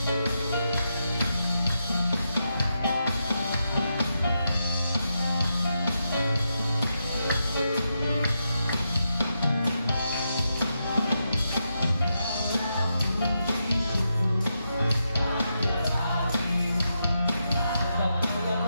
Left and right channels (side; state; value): both; inverted; correlation -0.84